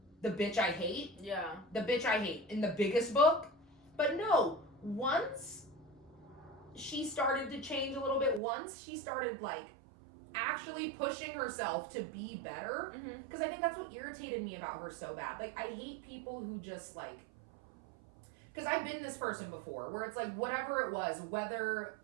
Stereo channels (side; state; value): left; drops out; at 8.4 s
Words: the bitch I hate? Yeah. The bitch I hate in the biggest book? But no, once she started to change a little bit, once she started, like, actually pushing herself to be better, because I think that's what irritated me about her so bad. Like, I hate people who just, like, because I've been this person before, where it's like, whatever it was, whether,